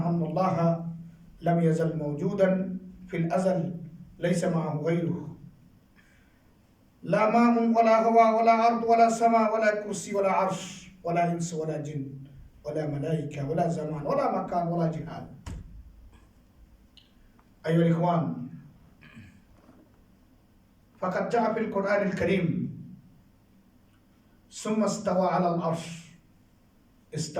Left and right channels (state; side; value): identical; both; correlation 1.00